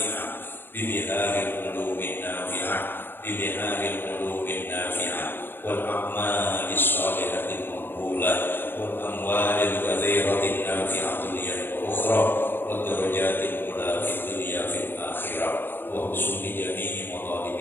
bi biharil ulumin nafi'ah, bi biharil ulumin nafi'ah wal a'malis shalihatil maqbulah wal amwalil katsiratin nafi'atin wa ukhra wad darajatil ula fid dunya fil akhirah wa husni jami'i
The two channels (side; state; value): right; late; 0.10 ms